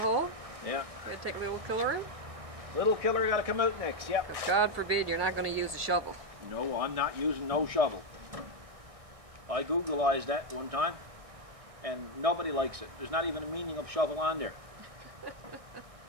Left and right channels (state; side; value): late; left; 1.6 ms